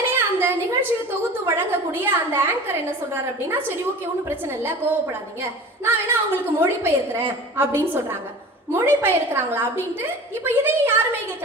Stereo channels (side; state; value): both; normal; correlation 0.38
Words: அந்த நிகழ்ச்சியை தொகுத்து வழங்கக்கூடிய அந்த ஆங்கர் என்ன சொல்றாரு அப்படின்னா, சரி ஓகே, ஒன்றும் பிரச்சனை இல்லை, கோவப்படாதீங்க, நான் வேணா அவங்களுக்கு மொழிபெயர்க்கிறேன் அப்படின்னு சொல்றாங்க. மொழிபெயர்க்கிறாங்களா அப்படின்ட்டு இப்ப இதையும் யாருமே